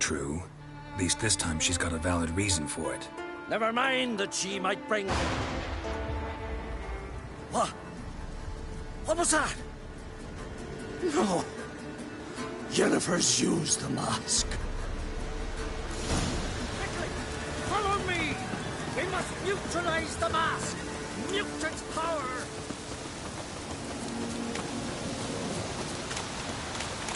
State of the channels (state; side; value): identical; both; correlation 1.00